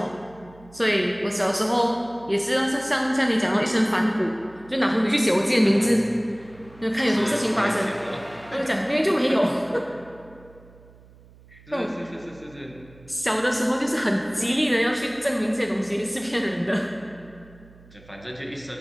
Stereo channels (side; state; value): right; noise; hum, 24 dB below the sound